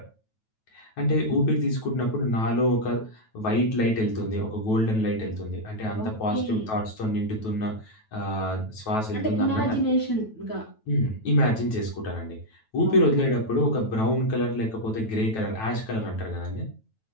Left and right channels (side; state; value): right; late; 9.2 ms